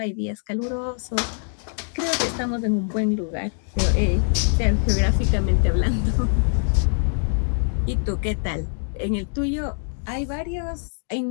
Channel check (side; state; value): right; silent; 63 dB below the other